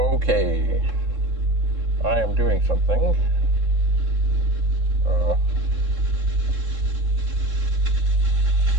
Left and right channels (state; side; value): late; left; 3.7 ms